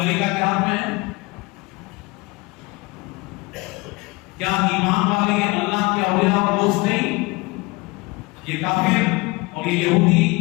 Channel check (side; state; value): right; quieter; 24.5 dB